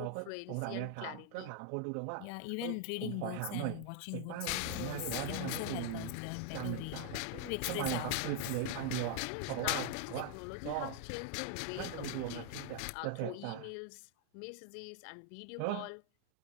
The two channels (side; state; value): both; different; correlation 0.00